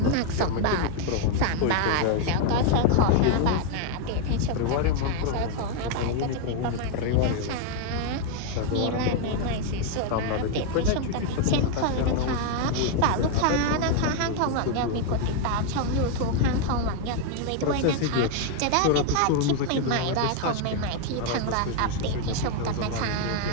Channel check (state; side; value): different; both; correlation 0.00